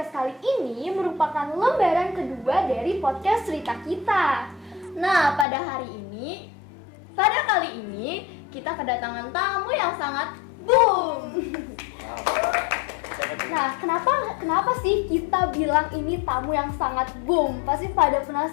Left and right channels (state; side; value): drops out; right; at 5.5 s